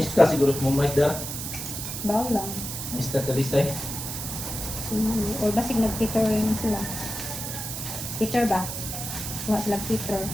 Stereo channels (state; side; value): noise; right; hiss, 6 dB below the sound